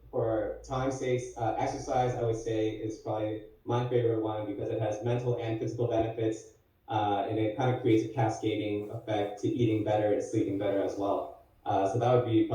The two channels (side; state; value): both; identical; correlation 1.00